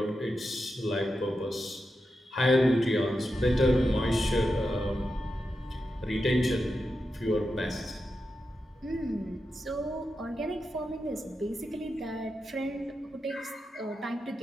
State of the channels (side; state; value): both; normal; correlation 0.88